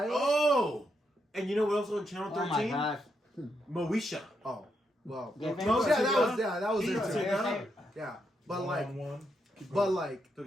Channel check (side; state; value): both; normal; correlation 0.80